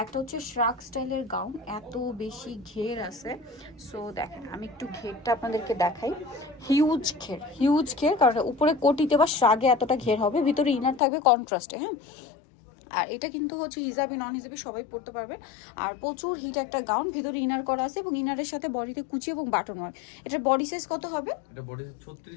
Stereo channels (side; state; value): right; drops out; at 11.0 s